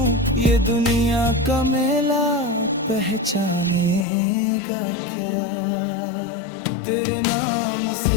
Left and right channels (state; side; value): drops out; right; at 4.0 s